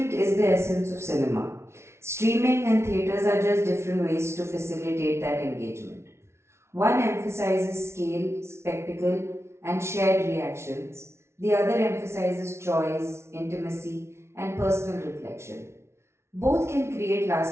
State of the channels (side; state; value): left; late; 0.13 ms